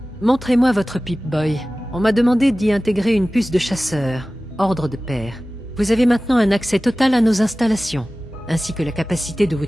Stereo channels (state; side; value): normal; both; correlation 0.97